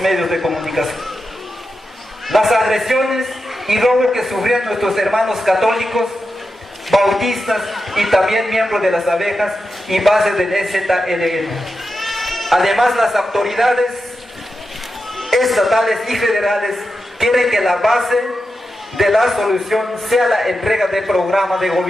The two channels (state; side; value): normal; both; correlation 0.89